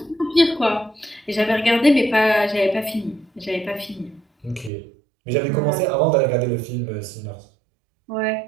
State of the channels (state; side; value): drops out; left; at 4.7 s